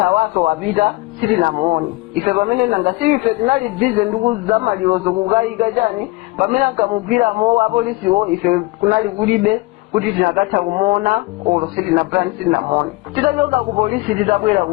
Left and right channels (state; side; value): quieter; right; 22.4 dB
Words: wapita sitinamuone ife pamene nanga si ife tinali bize ndikuzamalirozo kukayika chani pamene ankamugwiramo apolisiwo ife kunali kulibe kuti tinakatha kumuona olo sitinaputani sitinamuone titachoka ku polisi titabwera